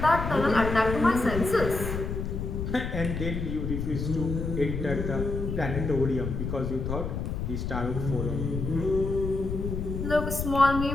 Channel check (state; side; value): noise; left; rumble, 4 dB below the sound